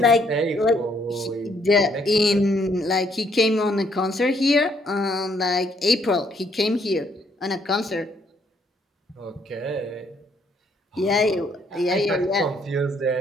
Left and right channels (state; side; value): normal; both; correlation 0.69